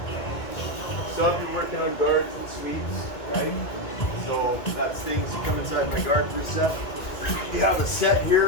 some of you working on guards and sweeps, right? So that's things you come inside my guard for a set. You have a set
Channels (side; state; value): right; late; 2.4 ms